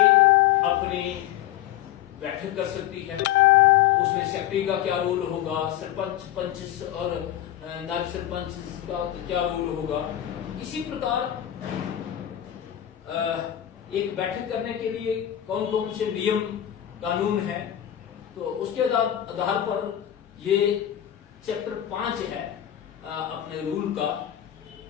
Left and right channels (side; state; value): right; quieter; 12.3 dB